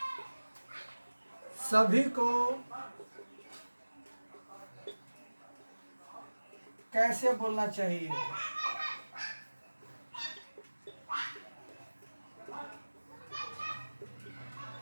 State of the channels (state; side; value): inverted; both; correlation -1.00